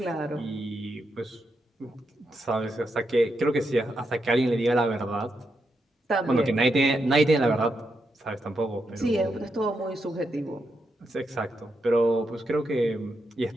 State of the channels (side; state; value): both; normal; correlation 0.83